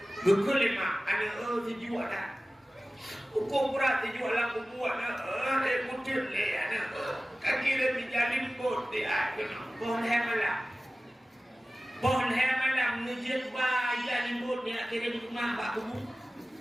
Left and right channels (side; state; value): both; normal; correlation 0.96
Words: Beku lima. Anak dijual dah. Hukum berat dijual lah. Aku buat dah. Kutil ni anak. Kaki dia dijalin bot dia. Pohon malam. Pohon malam ngejek bayar limbut ni nak kirim rumah pak kubu.